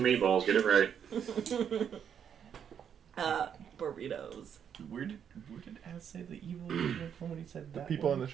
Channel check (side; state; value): left; quieter; 8.2 dB